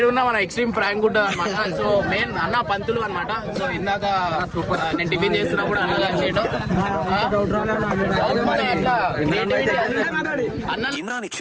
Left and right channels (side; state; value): both; identical; correlation 1.00